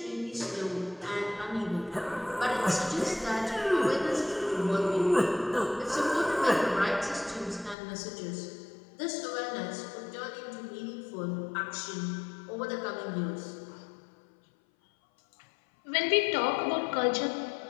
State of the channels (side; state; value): right; drops out; at 7.8 s